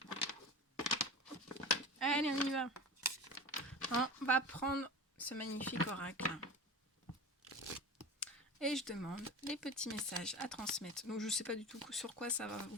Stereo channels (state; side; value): normal; both; correlation 0.32